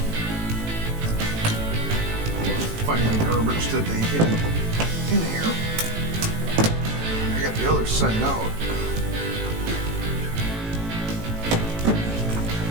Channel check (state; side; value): late; left; 18 ms